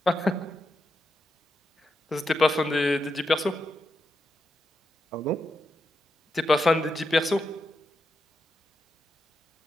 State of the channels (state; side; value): normal; both; correlation 0.85